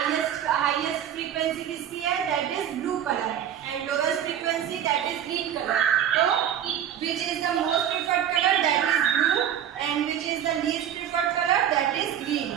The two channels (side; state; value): left; quieter; 9.9 dB